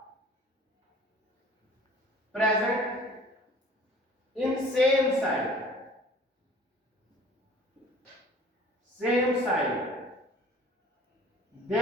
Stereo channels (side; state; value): both; normal; correlation 0.50